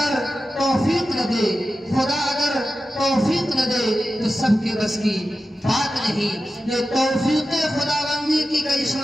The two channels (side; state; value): both; normal; correlation 0.92